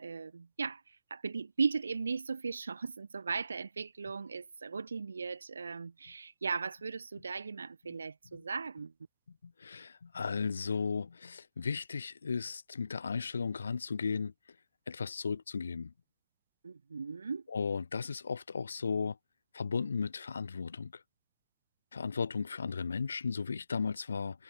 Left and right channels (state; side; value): inverted; both; correlation -0.87